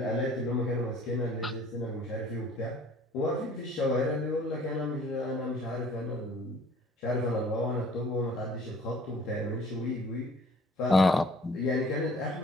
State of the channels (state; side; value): normal; both; correlation 0.53